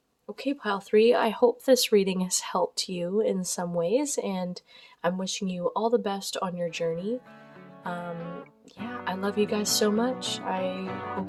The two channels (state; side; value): identical; both; correlation 1.00